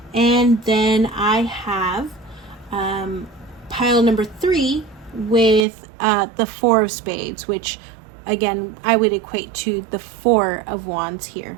And then I have pile number 3 with the 4 of spades, which again I would equate to the 4 of wands here.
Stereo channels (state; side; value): drops out; left; at 5.7 s